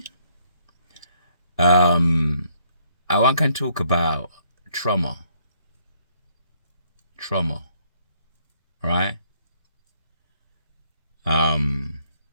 I want to talk about trauma. Right?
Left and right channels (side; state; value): both; inverted; correlation -0.68